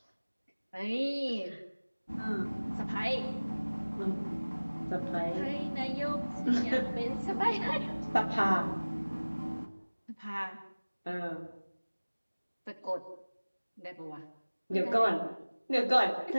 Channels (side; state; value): both; inverted; correlation -1.00